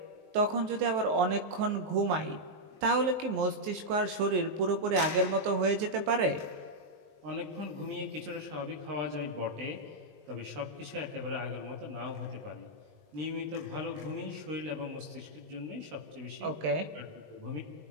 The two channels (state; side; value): late; left; 19 ms